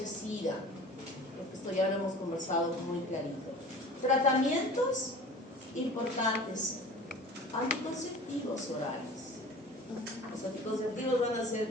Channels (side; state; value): both; normal; correlation 0.41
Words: Esto ya lo hemos conversado muy clarito. Tratamientos importantes. Anticonceptivos orales. Los anticonceptivos van a hacer